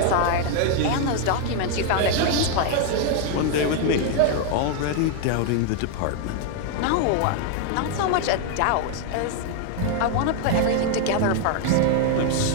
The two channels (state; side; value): different; both; correlation 0.00